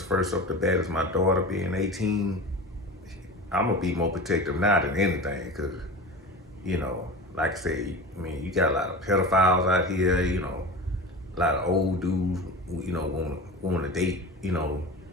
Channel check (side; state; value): both; normal; correlation 0.31